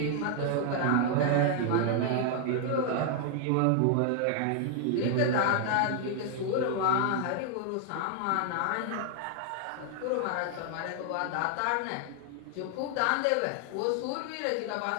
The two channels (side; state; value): both; different; correlation 0.00